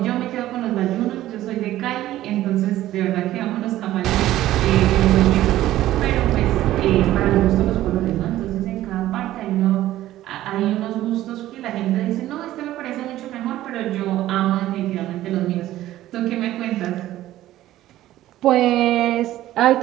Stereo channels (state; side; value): quieter; left; 14.4 dB